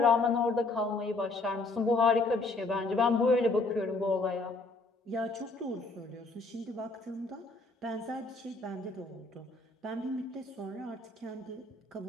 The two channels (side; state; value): right; quieter; 3.3 dB